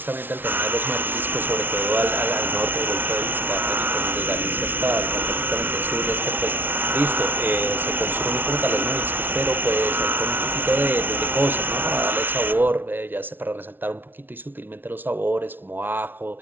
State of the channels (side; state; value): left; late; 0.097 ms